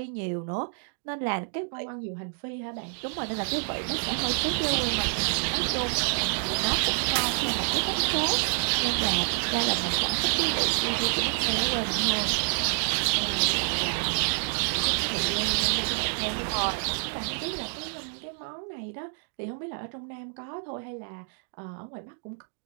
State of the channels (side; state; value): left; silent; 59 dB below the other